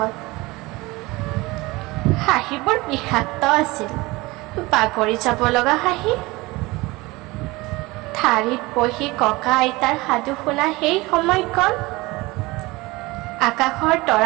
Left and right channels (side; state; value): left; quieter; 21.8 dB